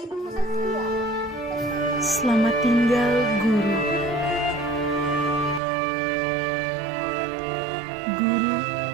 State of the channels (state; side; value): drops out; left; at 5.6 s